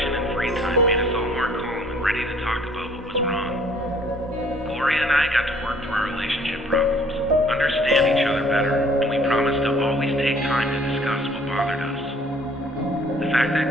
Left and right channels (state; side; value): normal; both; correlation 0.57